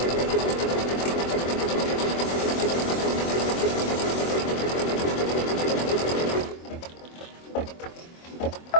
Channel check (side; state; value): right; late; 24 ms